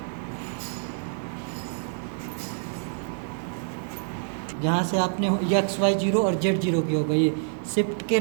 जहाँ से आपने XY0 और Z0 की होगा, ये शिफ्ट के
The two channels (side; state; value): left; silent; digital silence